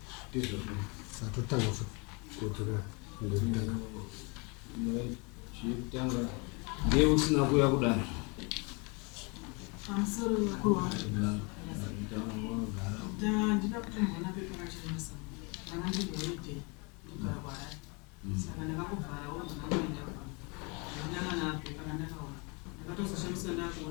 satotanga kudzokera chitanga ndiye usina kuya kudare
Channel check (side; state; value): right; quieter; 30.7 dB